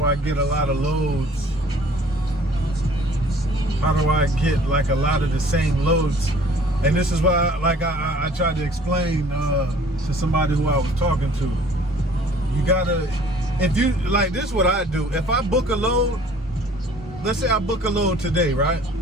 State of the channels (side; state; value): both; normal; correlation 0.53